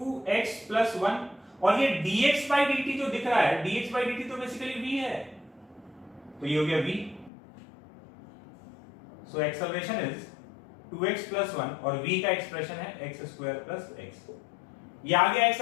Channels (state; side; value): drops out; right; at 7.3 s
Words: प्लस 1, और ये dx बाई dt जो दिख रहा है, dx बाई dt तो बेसिकली v है, तो ये हो गया v। So acceleration is 2x plus 1 और v का एक्सप्रेशन है x स्क्वायर प्लस x। ये आ गया